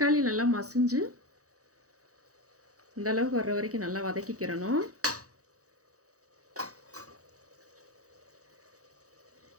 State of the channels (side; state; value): left; late; 0.66 ms